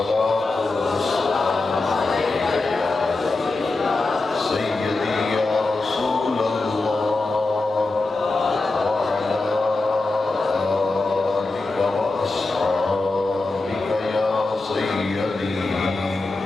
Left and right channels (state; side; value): quieter; right; 3.3 dB